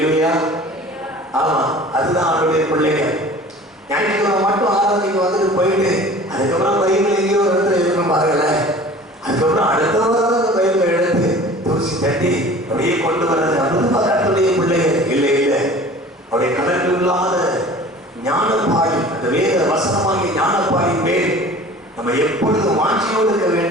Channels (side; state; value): both; normal; correlation 0.44